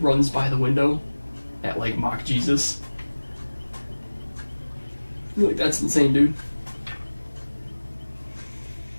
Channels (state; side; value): inverted; both; correlation -1.00